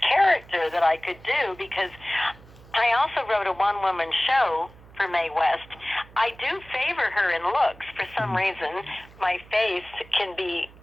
character that I could do, because I also wrote a one-woman show for Mae West. I do favor her in looks. For some reason, my face can be,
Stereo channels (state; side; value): noise; right; hum, 22 dB below the sound